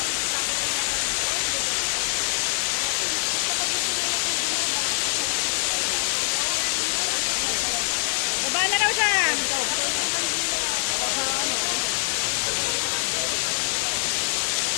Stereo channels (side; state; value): right; silent; 59 dB below the other